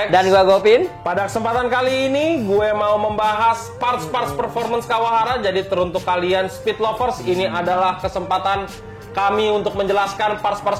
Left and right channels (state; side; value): identical; both; correlation 1.00